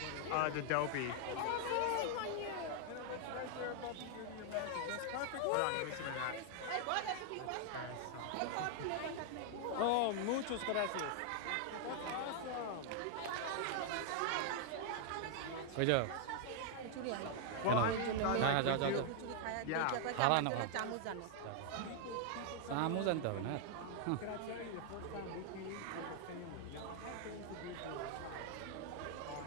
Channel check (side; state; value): both; different; correlation 0.00